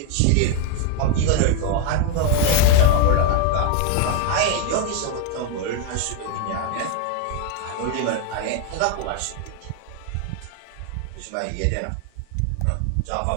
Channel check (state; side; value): different; both; correlation 0.01